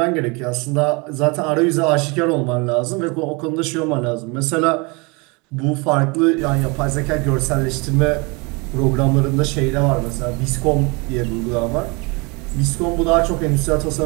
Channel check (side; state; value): left; quieter; 28.8 dB